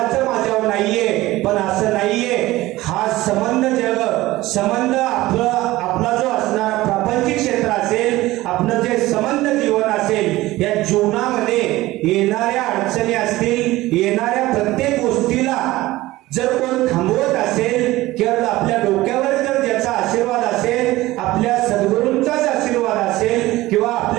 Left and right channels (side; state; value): left; quieter; 17.8 dB